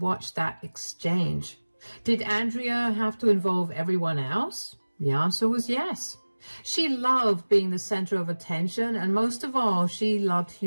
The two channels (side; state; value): both; inverted; correlation -1.00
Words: that exchange. Did Andrea have to involve everyone else? The answer was yes. She loved being the center of attention, and most of all, she loved